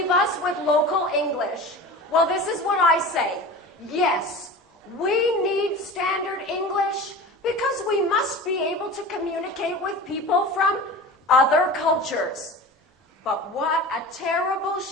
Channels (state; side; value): normal; both; correlation 0.34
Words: us with local English? Well, this is what I say. Yes, we need standard English because we must be able to communicate with people from other cultures. But what a terrible